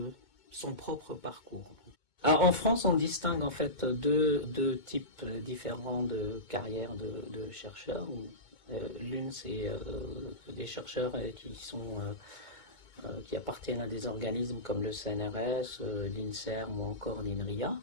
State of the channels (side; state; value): right; late; 2.2 ms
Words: son propre parcours. Alors, en France, on distingue en fait deux types différents de carrières de chercheurs. L'une, c'est des chercheurs qui appartiennent à des organismes comme le CNRS, l'INSERM ou encore l'INRIA,